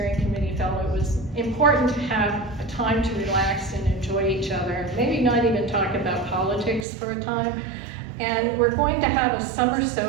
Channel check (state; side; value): drops out; left; at 6.9 s